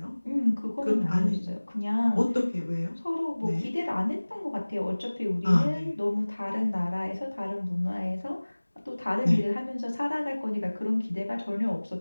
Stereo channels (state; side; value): inverted; both; correlation -1.00